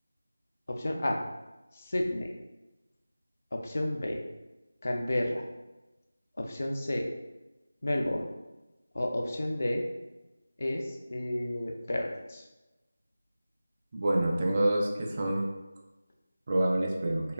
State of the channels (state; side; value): inverted; both; correlation -0.96